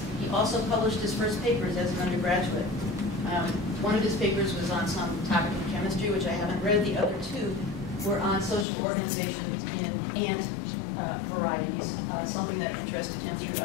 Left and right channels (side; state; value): right; drops out; at 8.7 s